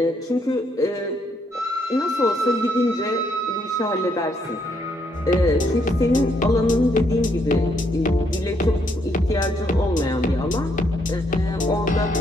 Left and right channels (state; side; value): normal; both; correlation 0.73